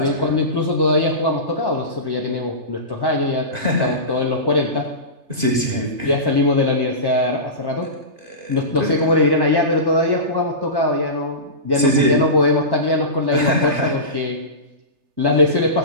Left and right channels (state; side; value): late; left; 3.3 ms